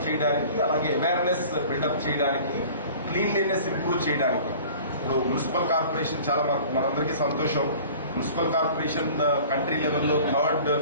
చేయడానికి, అలాగే అవేర్నెస్ బిల్డప్ చేయడానికి, క్లీన్లీనెస్ ఇంప్రూవ్ చేయడానికి. ఇప్పుడు మున్సిపల్ కార్పొరేషన్ చాలా మనందరికీ సంతోషం. మున్సిపల్ కార్పొరేషన్ కంట్రీ లెవెల్లో 3rd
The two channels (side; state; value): both; inverted; correlation -0.45